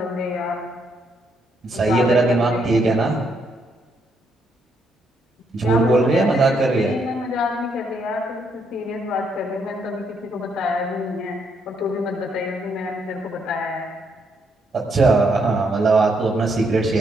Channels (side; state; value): both; normal; correlation 0.75